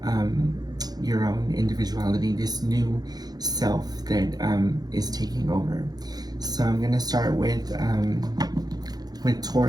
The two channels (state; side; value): late; left; 0.19 ms